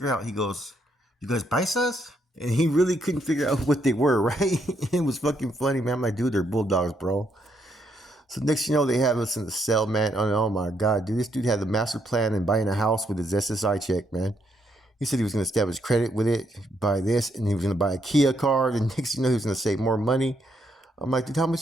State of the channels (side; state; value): both; normal; correlation 0.75